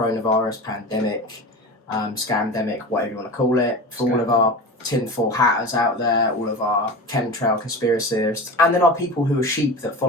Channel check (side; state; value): both; normal; correlation 0.30